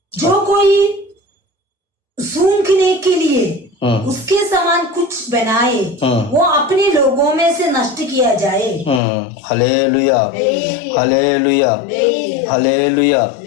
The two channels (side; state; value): right; drops out; at 9.0 s